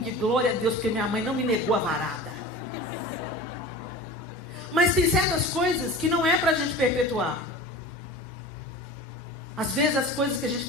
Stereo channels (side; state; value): both; normal; correlation 0.36